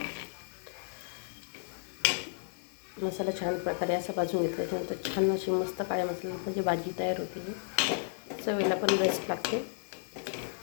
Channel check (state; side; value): silent; right; digital silence